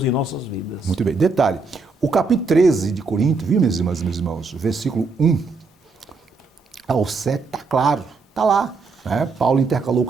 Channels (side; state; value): left; quieter; 4.1 dB